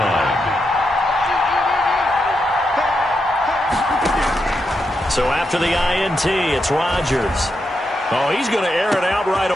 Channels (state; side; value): normal; both; correlation 0.84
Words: So after the INT, it's Rodgers. Oh, he's going to air it out right.